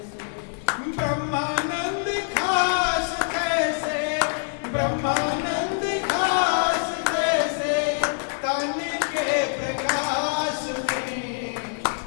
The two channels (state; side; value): silent; right; 62 dB below the other